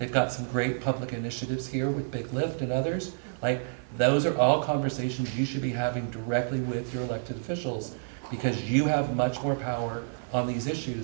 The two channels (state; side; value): silent; left; 59 dB below the other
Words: got some great public initiatives here with Big Lift and others. Those are all conversations you should be having directly with your elected officials, because you have much more power on these